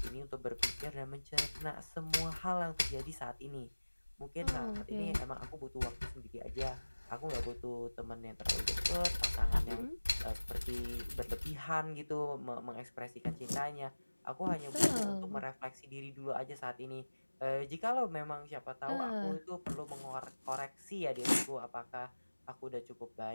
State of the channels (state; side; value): inverted; both; correlation -1.00